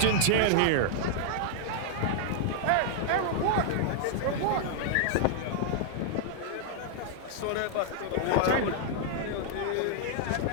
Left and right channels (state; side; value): different; both; correlation -0.01